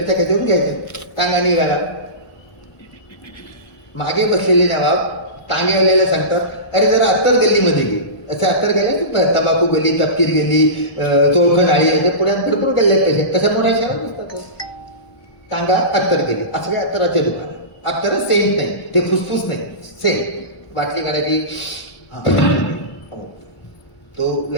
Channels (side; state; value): right; late; 1.0 ms